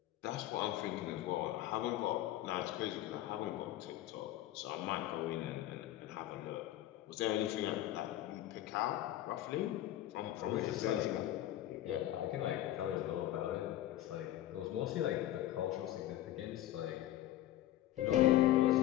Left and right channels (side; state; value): right; quieter; 13.8 dB